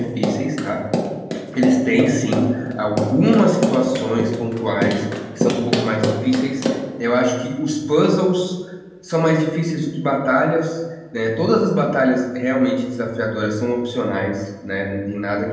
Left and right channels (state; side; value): identical; both; correlation 1.00